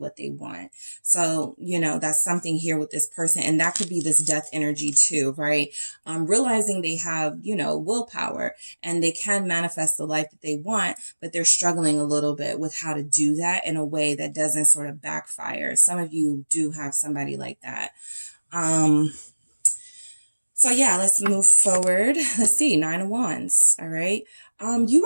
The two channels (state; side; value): inverted; both; correlation -1.00